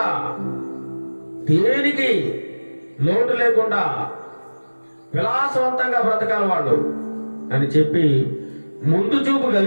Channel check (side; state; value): both; inverted; correlation -1.00